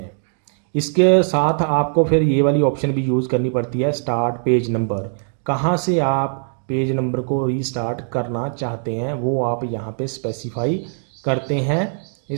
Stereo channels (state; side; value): silent; left; digital silence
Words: इसके साथ आपको फिर ये वाली ऑप्शन भी यूज़ करनी पड़ती है स्टार्ट पेज नंबर। कहाँ से आप पेज नंबर को रीस्टार्ट करना चाहते हैं वो आप यहाँ पे स्पेसिफाई करते हैं